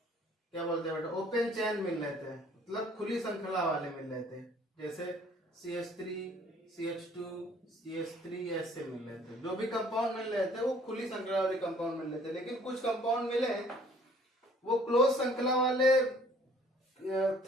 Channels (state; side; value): normal; both; correlation 0.57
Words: बेटा, ओपन चेन मिल रहे थे, मतलब खुली श्रृंखला वाले मिल रहे थे, जैसे CH3, CH2, CH3 ऐसे मिल रहे थे। जो भी कंपाउंड मिल रहे थे वो खुली श्रृंखला वाले कंपाउंड मिल रहे थे। लेकिन कुछ कंपाउंड मिले वो क्लोज श्रृंखला वाले